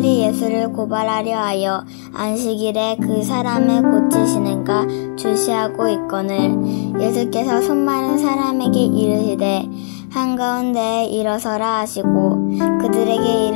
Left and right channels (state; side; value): silent; right; 60 dB below the other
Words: 예수를 고발하려 하여 안식일에 그 사람을 고치시는가 주시하고 있거늘 예수께서 손 마른 사람에게 이르시되 한가운데에 일어서라 하시고 그들에게